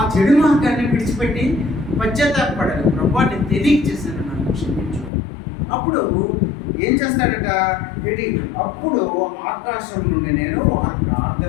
చెడు మార్గాన్ని విడిచిపెట్టి పశ్చాత్తాపపడాలి. ప్రభువా, నేను తెలియక చేశాను, నన్ను క్షమించు. అప్పుడు ఏం చేస్తాడట? అప్పుడు ఆకాశం నుండి నేను వారి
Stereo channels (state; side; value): drops out; right; at 5.1 s